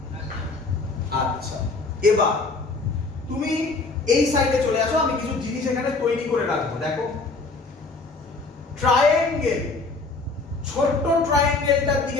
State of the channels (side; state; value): right; quieter; 3.7 dB